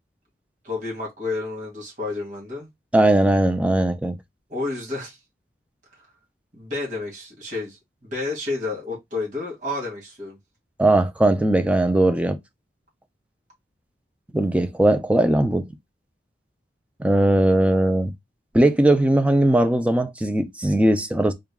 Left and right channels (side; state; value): both; normal; correlation 0.89